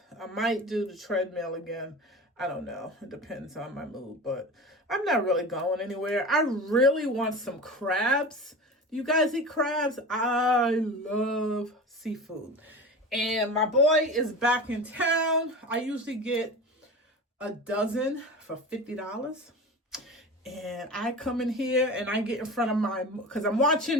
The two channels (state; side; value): normal; both; correlation 0.31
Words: I might do the treadmill again. I don't know. It depends on my mood, but I'm not really going anywhere. I really want some crabs. Do you guys eat crabs? I love seafood. And my boy is back in town. I usually get a dozen for $50. And I come in here and I get in front of because I'm